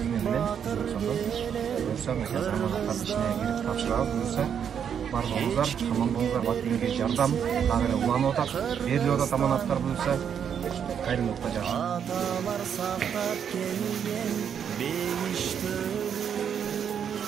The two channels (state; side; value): quieter; left; 8.0 dB